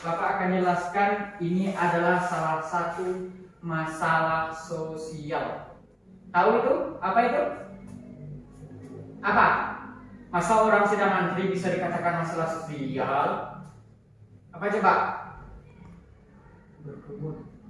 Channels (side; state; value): both; identical; correlation 1.00